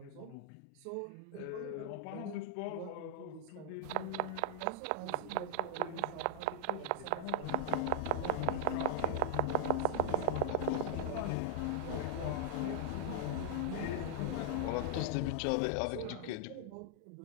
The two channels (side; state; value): both; different; correlation 0.00